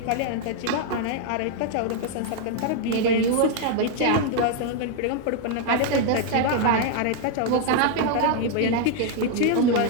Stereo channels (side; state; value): both; different; correlation 0.00